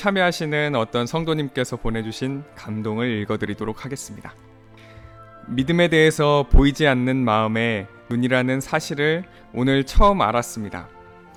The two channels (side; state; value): both; identical; correlation 1.00